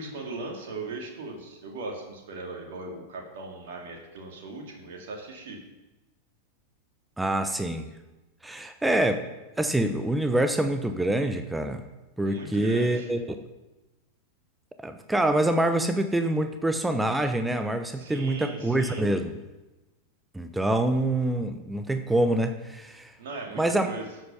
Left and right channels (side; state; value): both; normal; correlation 0.74